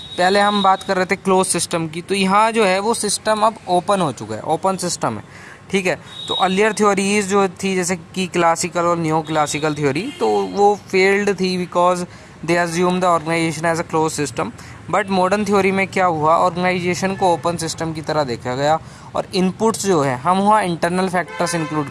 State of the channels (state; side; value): identical; both; correlation 1.00